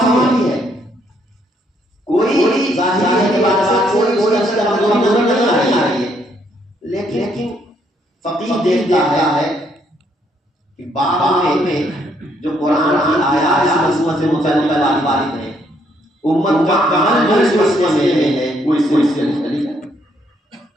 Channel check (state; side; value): normal; both; correlation 0.71